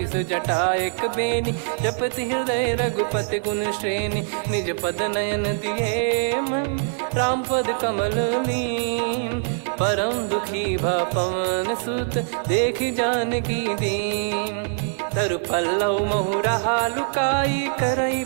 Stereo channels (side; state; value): left; silent; digital silence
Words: जटा एक बेनी, जपति हृदय रघुपति गुण श्रेणी। निज पद नयन दिए मन, राम पद कमल लीन। परम दुखी भा पवन सुत, देखि जानकी दीन। तरु पल्लव महु रहा लुकाई, करई